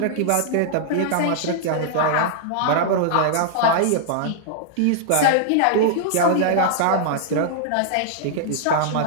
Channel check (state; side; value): different; both; correlation -0.01